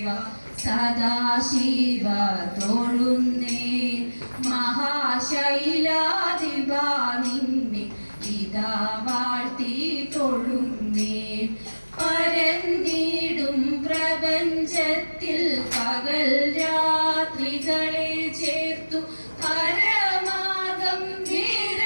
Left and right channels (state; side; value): inverted; both; correlation -1.00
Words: സദാശിവ തൊഴുന്നേ. മഹാശൈലാധിപ നിന്നെ ഇതാ വാഴ്ത്തി തൊഴുന്നേ. പരന്നിടും പ്രപഞ്ചത്തിൽ പകൽ രാത്രികളെ ചേർത്തു പരമാർഗം